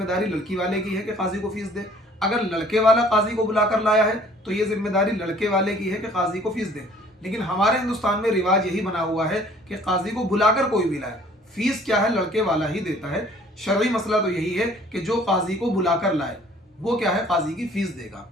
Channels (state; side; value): normal; both; correlation 0.55